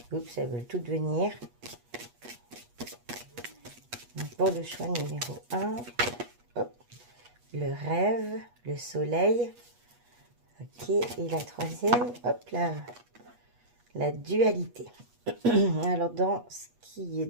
Oups, elles veulent toutes venir. Donc, pour le choix numéro 1, hop, le rêve, le soleil. Ok, et la troisième, hop là, la dualité. Alors, dans ce qui est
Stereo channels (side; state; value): left; late; 8.3 ms